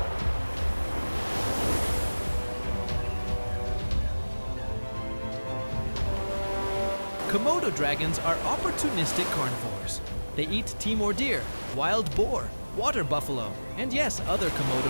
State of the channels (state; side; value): inverted; both; correlation -1.00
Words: Komodo dragons are opportunistic carnivores. They eat Timor deer, wild boar, water buffalo, and yes, other